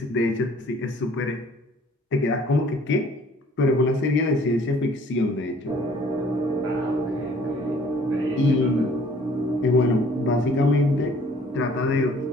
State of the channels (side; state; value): both; normal; correlation 0.56